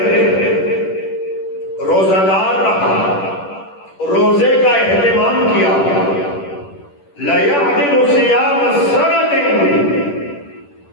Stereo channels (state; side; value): late; right; 10 ms